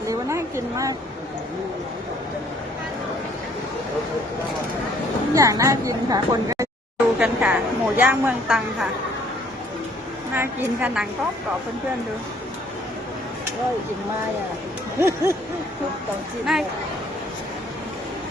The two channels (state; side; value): normal; both; correlation 0.61